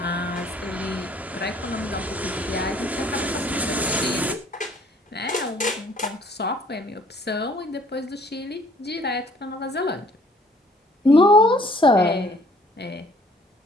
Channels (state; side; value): normal; both; correlation 0.58